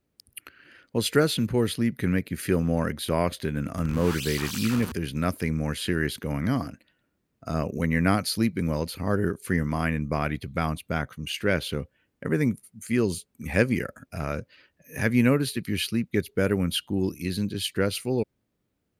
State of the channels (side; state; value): both; identical; correlation 1.00